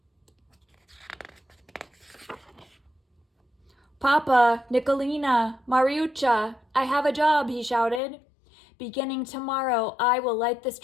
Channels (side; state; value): right; drops out; at 8.0 s